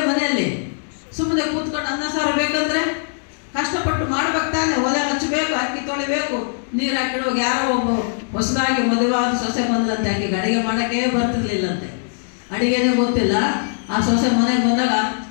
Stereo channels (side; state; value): right; silent; digital silence